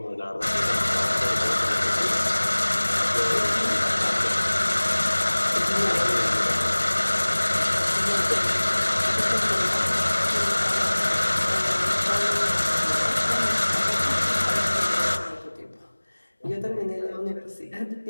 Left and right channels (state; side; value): inverted; both; correlation -1.00